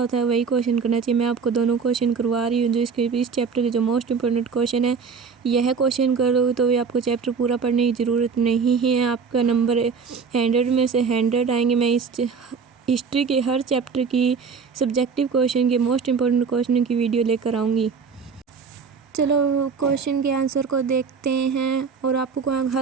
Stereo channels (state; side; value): quieter; left; 5.6 dB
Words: है वही क्वेश्चन करना चाहिए। मैं आपको दोनों क्वेश्चन करवा रही हूँ जो इस चैप्टर के जो मोस्ट इंपॉर्टेंट क्वेश्चन है। यह क्वेश्चन करोगे तो भी आपको चैप्टर पूरा पढ़ने की ज़रूरत नहीं है। आपका नंबर 100 में से 100 आएंगे। मैं इस हिस्ट्री के हर चैप्टर की सब्जेक्टिव क्वेश्चन के मोस्ट इंपॉर्टेंट क्वेश्चन की वीडियो लेकर आऊँगी। चलो क्वेश्चन के आंसर को देखते हैं और आपको